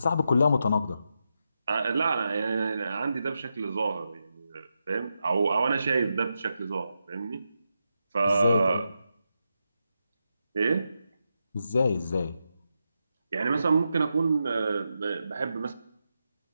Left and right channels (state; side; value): inverted; both; correlation -0.86